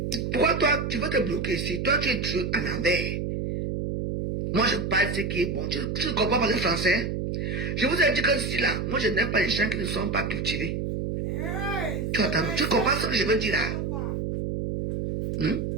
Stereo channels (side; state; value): right; noise; hum, 2 dB below the sound